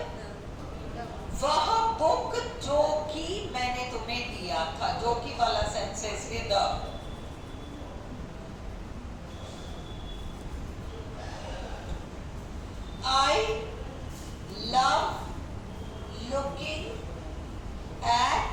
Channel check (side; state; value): both; identical; correlation 1.00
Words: वह बुक जो कि मैंने तुम्हें दिया था? जो कि वाला सेंसेस है the. I love looking